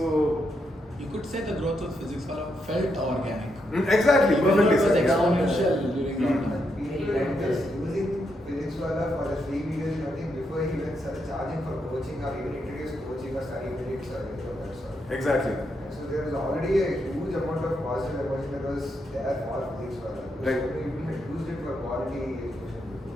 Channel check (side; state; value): both; normal; correlation 0.81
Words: you could say the growth of physics felt organic. Exactly, perfectly It was said. exponential during lockdown. People were just using physics for the free videos, I think before he even started charging for coaching or even introduced coaching or study minutes or anything of that sort. Exactly. And so there was already a huge amount of positive emotion that was there for physics for that. Right. So people had used it for quality education